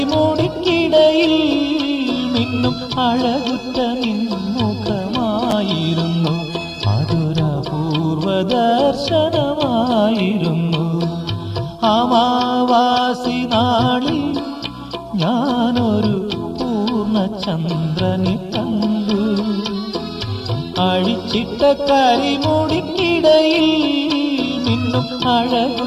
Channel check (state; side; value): identical; both; correlation 1.00